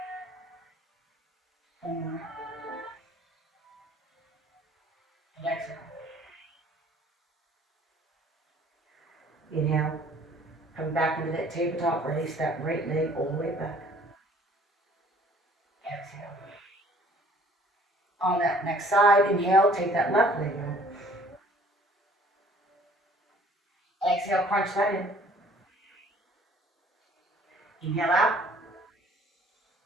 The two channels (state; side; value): normal; both; correlation 0.55